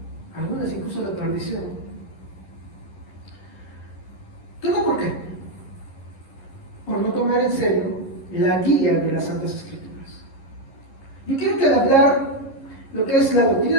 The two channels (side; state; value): right; late; 11 ms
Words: algunas incluso a la perdición. ¿Todo por qué? Por no tomar en serio la guía de las Santas Escrituras. Yo quiero que al hablar lo que es la